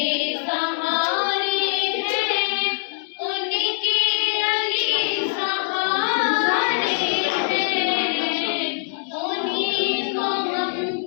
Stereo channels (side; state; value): right; silent; digital silence